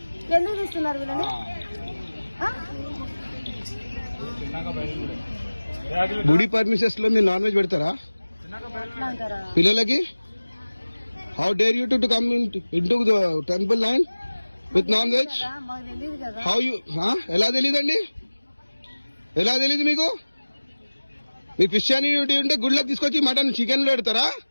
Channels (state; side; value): inverted; both; correlation -1.00